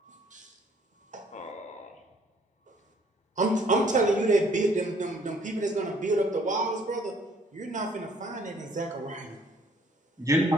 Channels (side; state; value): both; normal; correlation 0.61